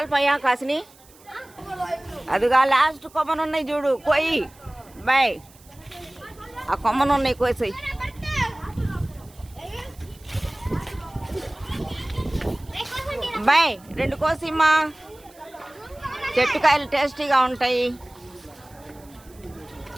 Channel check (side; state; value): right; noise; hiss, 26 dB below the sound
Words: కాసిని? అదిగా లాస్ట్ కొమ్మనున్నాయి చూడు, కోయి బాయ్. ఆ కొమ్మనున్నాయి కోసాయి. బాయ్ 2 కోసిమ్మా. చెట్టు కాయలు టేస్టీగా ఉంటాయి.